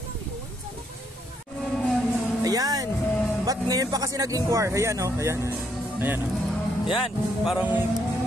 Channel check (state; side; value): normal; both; correlation 0.73